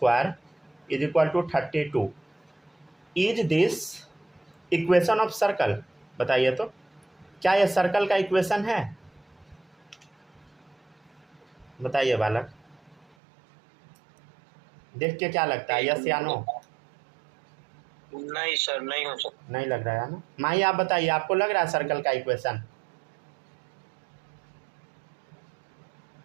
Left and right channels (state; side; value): drops out; left; at 13.1 s